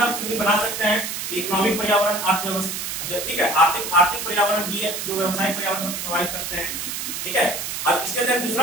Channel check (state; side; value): noise; right; hiss, 4 dB below the sound